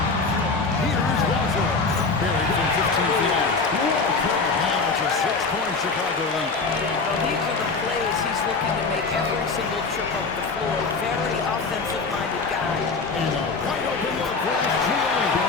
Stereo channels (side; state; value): right; quieter; 4.3 dB